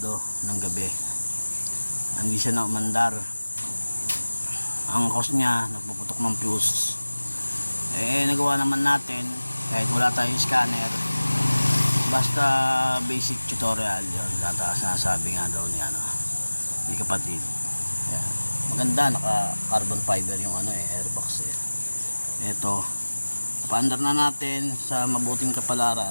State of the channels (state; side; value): inverted; both; correlation -1.00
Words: ng gabi. Hindi siya na umandar. Ang cause niya nagpuputok ng fuse. Nagawa naman natin kahit wala tayong scanner, basta basic tutorial yun. Sinasabi nga daw ni kapatid. Ayan. Maganda, naka carbon fiber yung airbox ito, paandar na natin sa mabuting